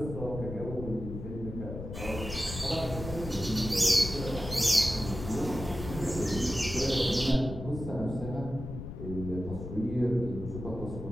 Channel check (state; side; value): noise; left; rumble, 8 dB below the sound